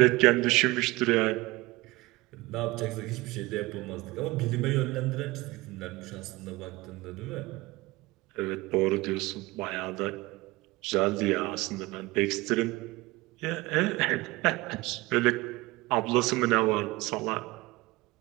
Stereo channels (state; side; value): quieter; left; 21.2 dB